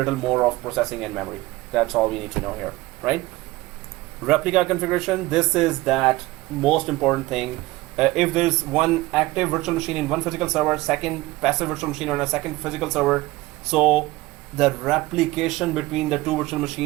more of processing and memory. That's all we need to know here, right? Replica configuration, this is that most important thing. If there's one active virtual machine in one physical server, second passive virtual machine on a second physical server, so the replication between the two virtual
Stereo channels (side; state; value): left; quieter; 19.5 dB